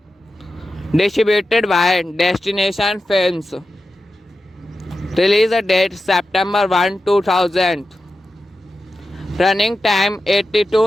Distributed by Destination Films. Release date September 1, 2000. Running time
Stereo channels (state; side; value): normal; both; correlation 0.91